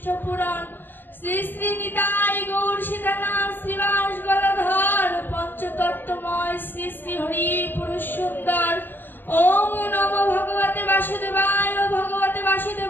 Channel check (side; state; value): right; late; 0.095 ms